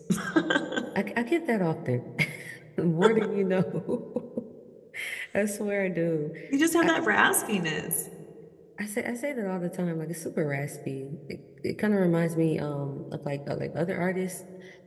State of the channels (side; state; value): both; identical; correlation 1.00